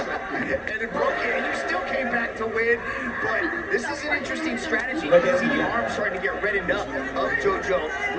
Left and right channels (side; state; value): both; identical; correlation 1.00